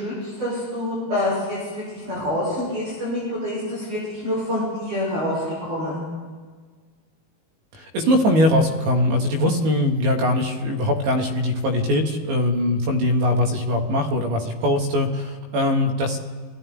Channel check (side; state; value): left; late; 19 ms